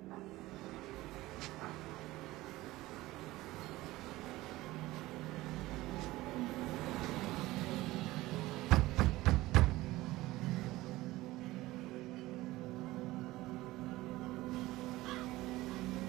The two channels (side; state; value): left; quieter; 18.2 dB